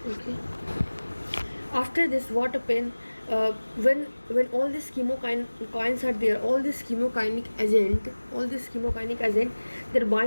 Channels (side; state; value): both; inverted; correlation -1.00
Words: Okay. After this, what happens when all these chemokines are there, all this chemokinic agent, they